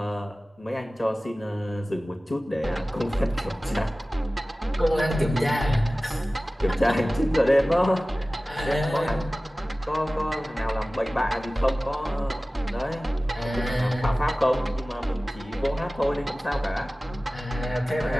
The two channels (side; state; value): both; normal; correlation 0.97